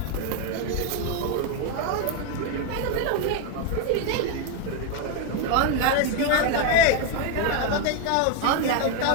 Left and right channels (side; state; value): both; different; correlation 0.01